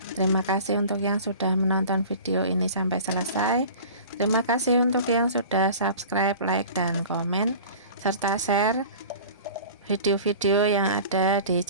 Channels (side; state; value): both; inverted; correlation -0.41